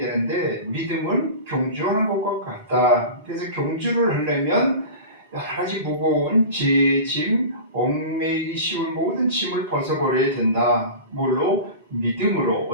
믿음은 경주하는 것과 같다. 그래서 경주를 하려면 여러 가지 무거운 짐, 얽매이기 쉬운 모든 짐을 벗어버려야 된다. 뭘로? 믿음으로.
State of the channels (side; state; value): both; inverted; correlation -0.33